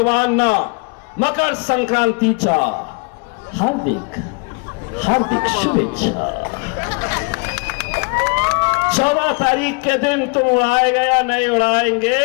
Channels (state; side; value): quieter; right; 31.9 dB